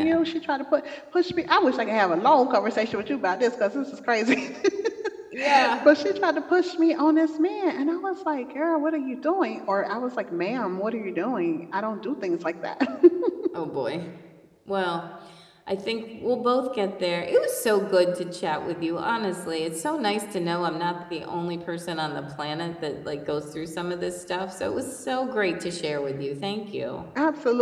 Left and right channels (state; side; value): identical; both; correlation 1.00